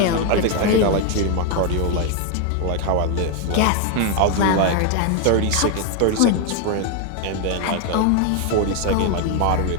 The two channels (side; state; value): both; different; correlation 0.01